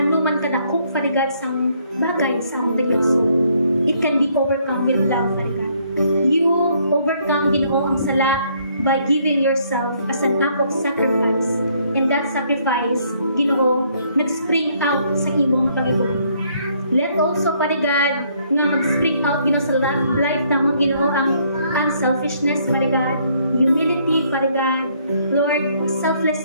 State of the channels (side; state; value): both; inverted; correlation -0.67